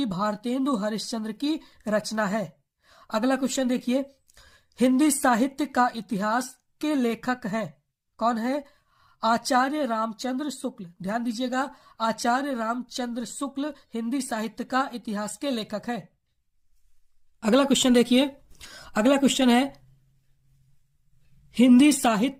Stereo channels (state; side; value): identical; both; correlation 1.00